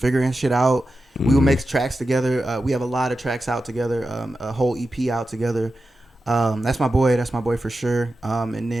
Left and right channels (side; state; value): both; normal; correlation 0.91